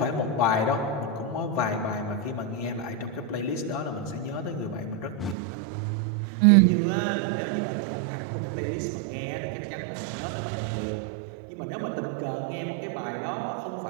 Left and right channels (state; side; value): drops out; left; at 5.4 s